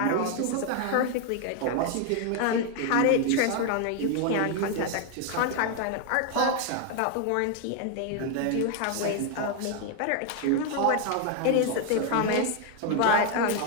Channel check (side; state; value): both; different; correlation 0.01